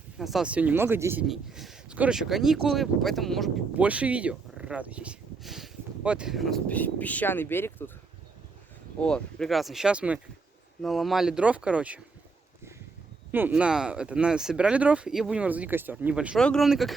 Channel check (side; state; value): left; quieter; 4.3 dB